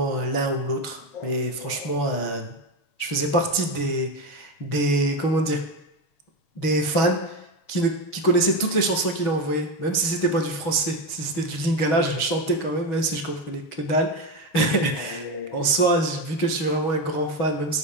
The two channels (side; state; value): right; late; 6.2 ms